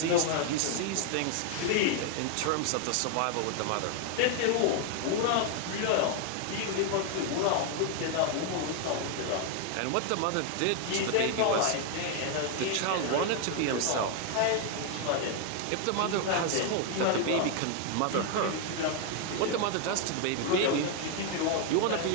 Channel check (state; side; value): different; both; correlation 0.00